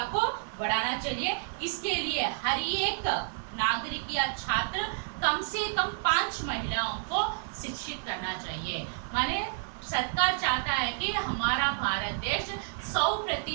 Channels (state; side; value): silent; left; digital silence